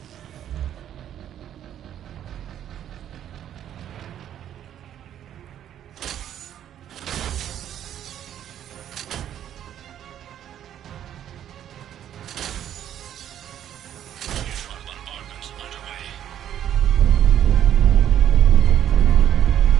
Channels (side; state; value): left; quieter; 10.5 dB